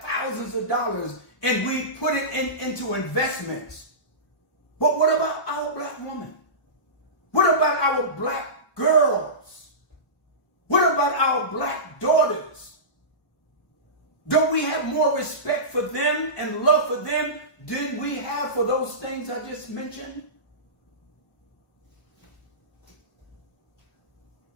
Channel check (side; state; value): right; late; 1.0 ms